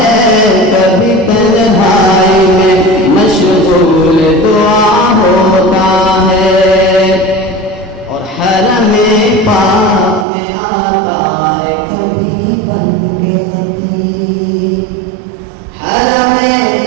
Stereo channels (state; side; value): drops out; left; at 10.2 s